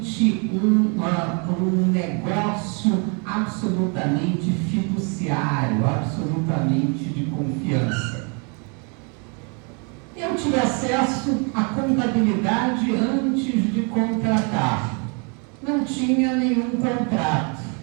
um negócio absolutamente fiduciário, absolutamente de confiança. Eu tive acesso à contabilidade antes de contratar. Não tinha nenhum contrato.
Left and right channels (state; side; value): quieter; left; 35.8 dB